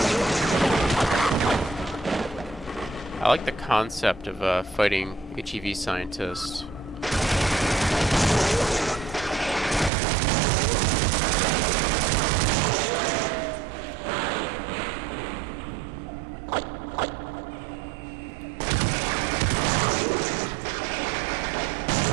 I like the concept of fighting HEV scientists.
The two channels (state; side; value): drops out; left; at 9.9 s